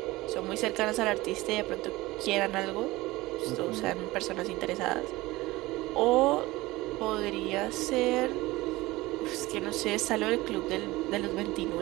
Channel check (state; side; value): quieter; left; 19.6 dB